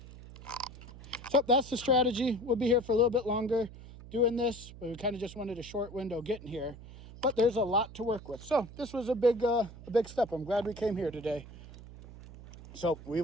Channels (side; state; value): right; noise; hum, 16 dB below the sound